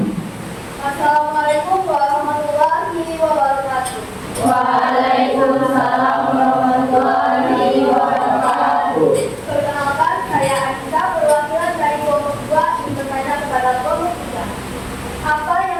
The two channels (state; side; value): identical; both; correlation 1.00